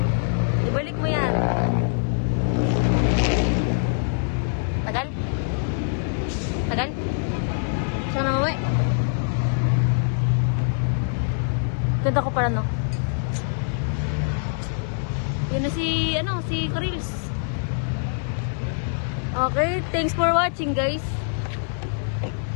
ibalik mo yan. Tagal? Tagal? Saan na mawi? Ganda ko pala, no? Yun na si, si Karils. Okay, thanks for watching, guys.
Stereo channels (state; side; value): silent; right; 63 dB below the other